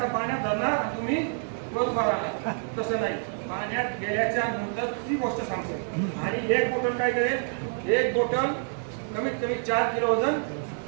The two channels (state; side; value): silent; left; 60 dB below the other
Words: पाण्यात धरणार तुम्ही वर उभा राहणार. तसं नाही, पाण्यात गेल्याच्या नंतर ती गोष्ट सांगतो. आणि एक बॉटल काय करेल, एक बॉटल कमीत कमी 4 किलो वजन